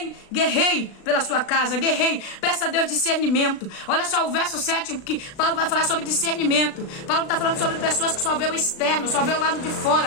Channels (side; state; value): right; late; 36 ms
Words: Guerrei pela sua casa, guerrei. Peça a Deus discernimento. Olha só o verso 7, que Paulo vai falar sobre discernimento. Paulo está falando sobre pessoas que só vê o externo, só vê o lado de